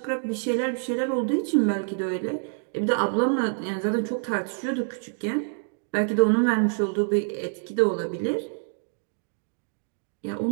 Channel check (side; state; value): left; silent; digital silence